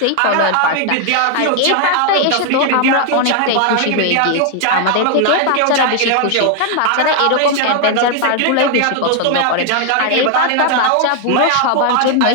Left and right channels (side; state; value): both; different; correlation 0.00